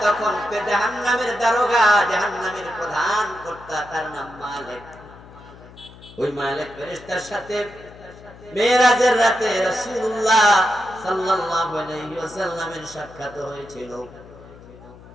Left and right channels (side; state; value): left; noise; hum, 20 dB below the sound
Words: তখন জাহান্নামের দারোগা, জাহান্নামের প্রধান কর্তা, তার নাম মালিক। ওই মালিক ফেরেশতার সাথে মেরাজের রাতে রাসূলুল্লাহ সাল্লাল্লাহু আলাইহি ওয়াসাল্লামের সাক্ষাৎ হয়েছিল।